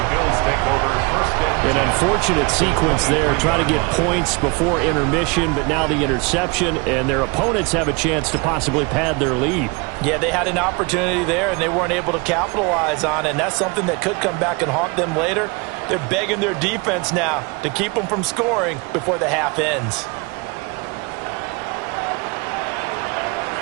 Bills take over first and 10. An unfortunate sequence there, trying to get points before intermission, but now the interception, and their opponents have a chance to possibly pad their lead. Yeah, they had an opportunity there, and they weren't able to capitalize on it, and that's something that could come back and haunt them later. They're begging their defense now to keep them from scoring before the half ends.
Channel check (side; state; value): left; quieter; 28.9 dB